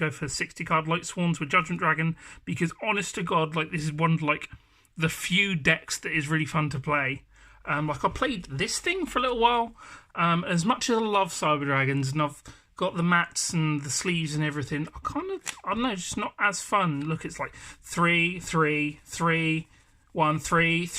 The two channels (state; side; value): identical; both; correlation 1.00